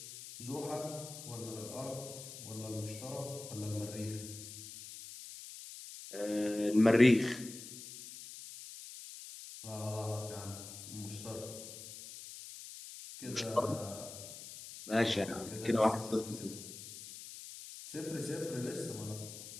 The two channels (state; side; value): noise; left; hiss, 12 dB below the sound